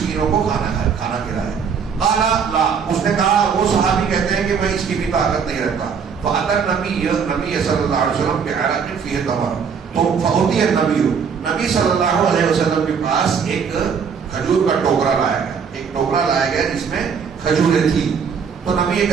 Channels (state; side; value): quieter; left; 6.5 dB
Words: کو کھانا کھلائے. قال لا، اس نے کہا، وہ صحابی کہتے ہیں کہ میں اس کی بھی طاقت نہیں رکھتا. فأتى النبي صلی اللہ علیہ وسلم بعرق فيه تمر، تو فأتي نبی صلی اللہ علیہ وسلم کے پاس ایک کھجور کا ٹوکرا لایا گیا، ایک ٹوکرا لایا گیا جس میں کھجوریں تھی. تو نبی